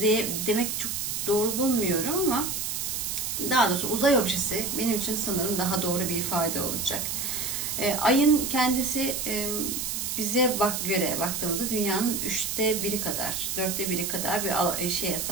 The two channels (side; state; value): right; noise; hiss, 2 dB below the sound